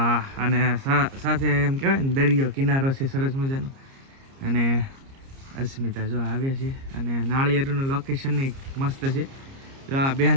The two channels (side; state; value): left; late; 30 ms